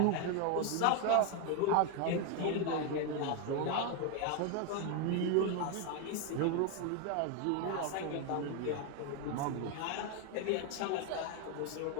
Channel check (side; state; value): both; different; correlation 0.01